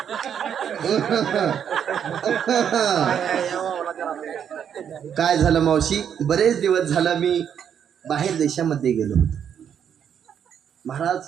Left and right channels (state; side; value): quieter; left; 8.5 dB